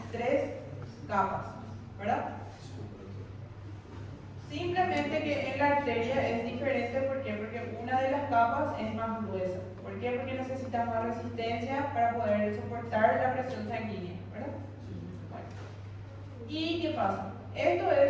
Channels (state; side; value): identical; both; correlation 1.00